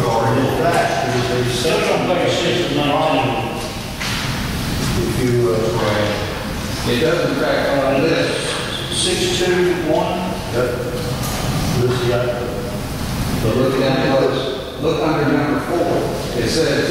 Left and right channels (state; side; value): identical; both; correlation 1.00